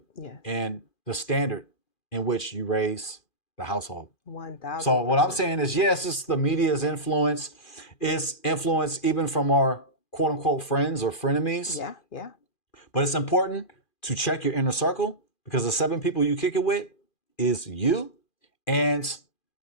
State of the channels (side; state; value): right; late; 2.4 ms